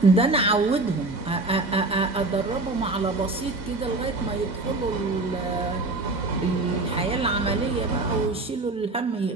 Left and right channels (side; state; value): left; quieter; 3.1 dB